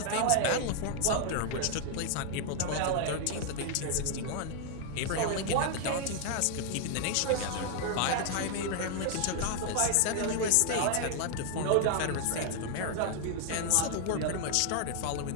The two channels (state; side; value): different; both; correlation 0.00